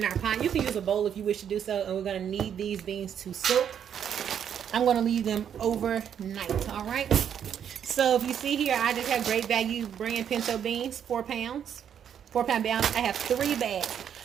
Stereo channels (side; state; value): left; quieter; 8.7 dB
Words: our pot. You can use a bowl if you wish to do so, and we're going to need these beans to soak. I'm going to leave them overnight, all right? So if you see here, I just have Great Value brand pinto beans, 4 pounds. 4-pound balance. I have 3 bags.